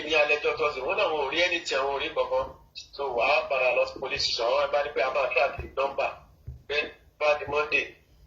ní alẹ́ tọ́tọ́sí wọ́n náà wọn ò rí ẹni tí àwọn ò rí kankan. So wàá padà lọ sí police station àwọn ẹ̀bá ní pé a máa track nọ́mbà bẹ́ẹ̀ bá di Monday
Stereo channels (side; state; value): both; identical; correlation 1.00